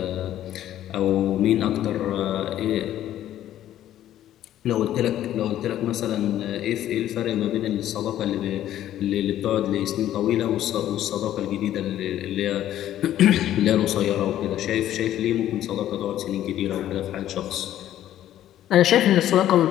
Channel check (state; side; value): quieter; right; 12.3 dB